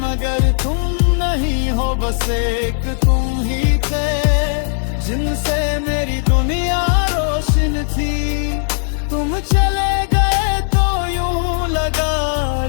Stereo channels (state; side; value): silent; right; 62 dB below the other